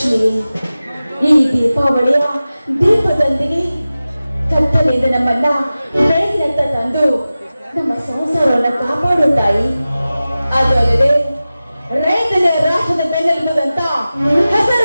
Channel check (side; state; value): both; inverted; correlation -0.96